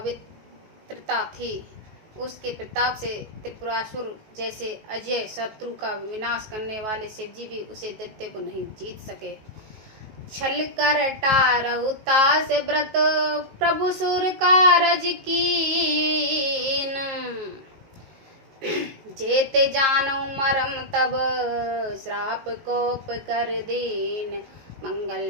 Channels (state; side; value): late; left; 19 ms